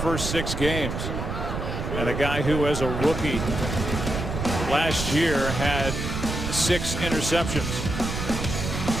6 games. And a guy who, as a rookie last year, had 6 interceptions.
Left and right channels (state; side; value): noise; right; rumble, 4 dB below the sound